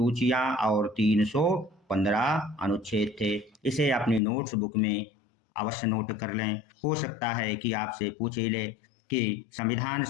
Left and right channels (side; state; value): right; drops out; at 4.2 s